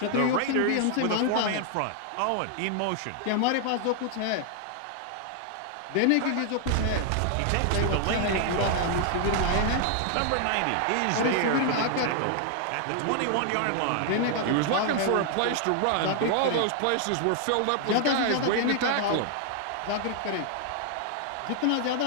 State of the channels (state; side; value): different; both; correlation 0.00